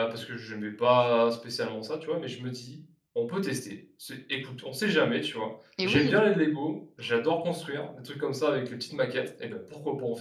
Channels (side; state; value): both; identical; correlation 1.00